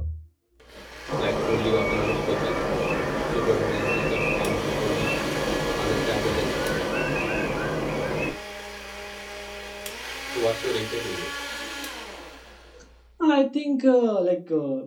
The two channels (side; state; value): both; identical; correlation 1.00